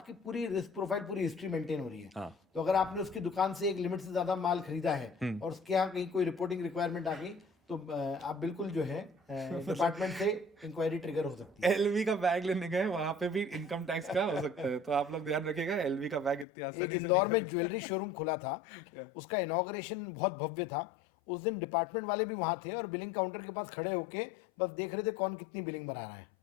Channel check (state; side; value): drops out; right; at 16.4 s